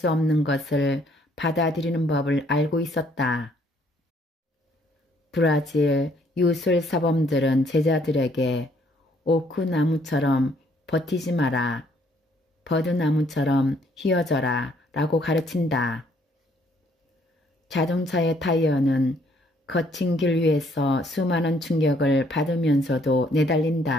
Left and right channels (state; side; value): normal; both; correlation 0.66